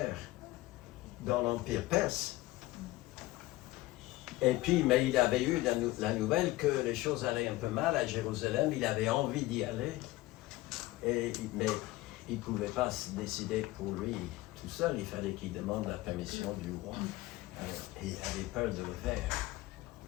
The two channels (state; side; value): quieter; right; 18.2 dB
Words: dans l'Empire perse. Et puis, mais il avait eu la nouvelle que les choses allaient un peu mal à Jérusalem, il avait envie d'y aller, mais il ne pouvait pas se décider pour lui tout seul, il fallait qu'il demande la permission du roi. Et il avait peur de le faire.